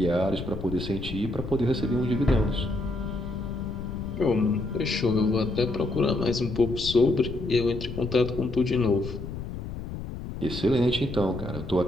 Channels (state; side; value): noise; left; rumble, 8 dB below the sound